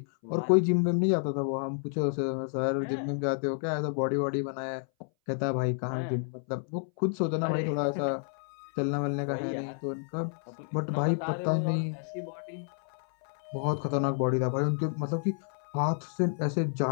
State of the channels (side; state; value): right; silent; 58 dB below the other